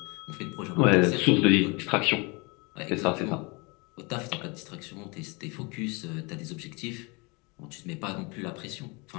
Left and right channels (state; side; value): quieter; right; 28.8 dB